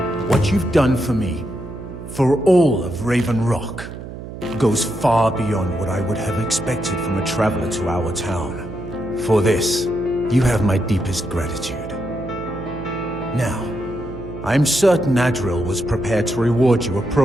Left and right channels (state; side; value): noise; right; hum, 11 dB below the sound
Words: What you've done for me, for all of Raven Rock, goes far beyond what I would have expected from a traveler to our town. For this, you have my deepest gratitude. Now, I'm certain Adril was prepared to reward you